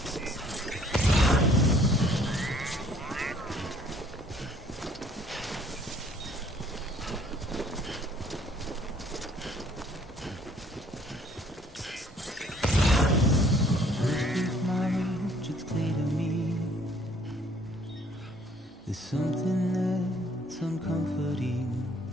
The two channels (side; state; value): both; normal; correlation 0.60